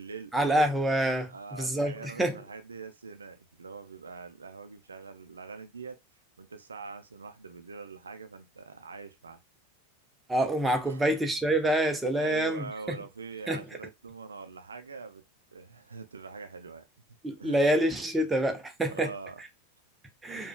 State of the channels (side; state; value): both; normal; correlation 0.67